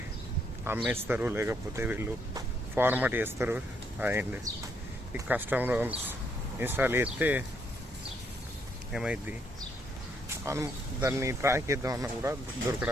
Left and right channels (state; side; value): normal; both; correlation 0.73